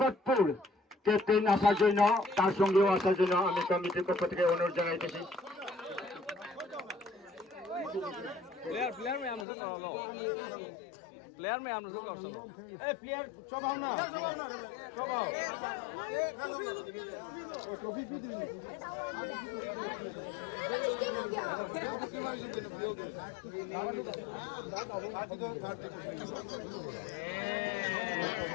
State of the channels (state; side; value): drops out; right; at 9.5 s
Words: captain আসার জন্য তার সঙ্গেও আসার জন্য আমি কমিটির পক্ষ থেকে অনুরোধ জানাইতেছি प्लेयर में हम लोग ए प्लेयर चबाओ ना चबाओ ओ ट्रॉफी भी दी